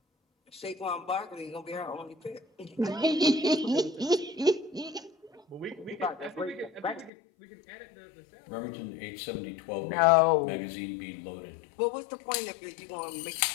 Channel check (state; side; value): drops out; right; at 7.1 s